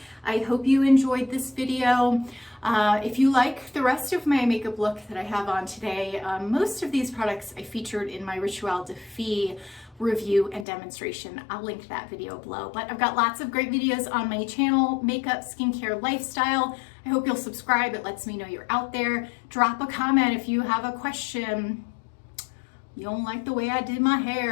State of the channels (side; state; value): right; drops out; at 10.7 s